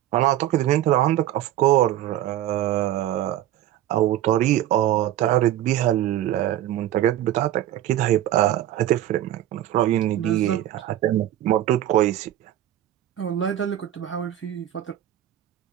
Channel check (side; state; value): left; quieter; 12.8 dB